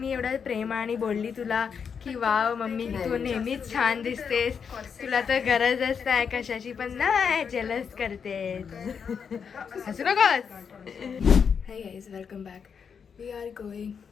एवढा प्रेमाने बोलली तुला की वाव मम्मी तू नेहमीच छान दिसतेस, तुला तर गरजच नाही कशाची, पण नाही जेलस करते. हसू नकोस. Hi guys, welcome back. We are going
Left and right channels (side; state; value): right; quieter; 6.6 dB